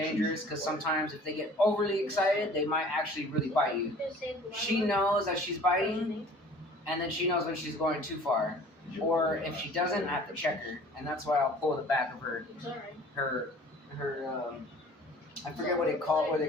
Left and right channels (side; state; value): both; normal; correlation 0.48